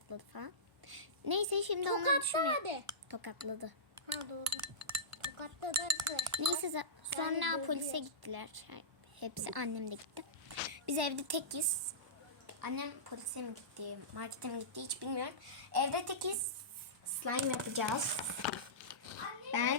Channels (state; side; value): normal; both; correlation -0.19